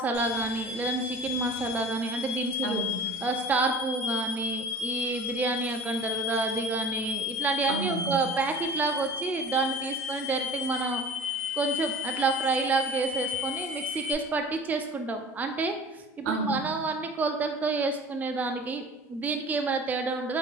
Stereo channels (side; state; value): both; normal; correlation 0.41